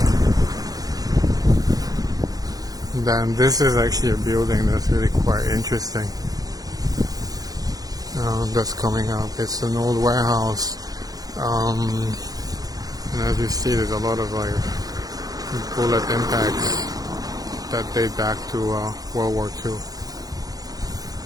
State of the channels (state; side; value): late; left; 0.18 ms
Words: Then this is actually a building that's really quite interesting. That's coming up. It's an old warehouse, and as you see, there's a lot of like bullet impacts that date back to World War II.